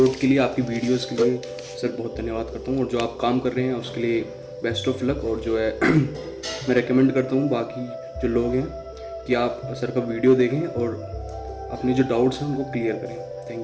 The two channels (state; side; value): identical; both; correlation 1.00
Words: के लिए, आपकी वीडियोस के लिए सर बहुत धन्यवाद करता हूँ। और जो आप काम कर रहे हैं उसके लिए बेस्ट ऑफ लक। और जो है मैं रेकमेंड करता हूँ बाकी जो लोग हैं कि आप सर का वीडियो देखें और अपने जो डाउट्स हैं उनको क्लियर करें।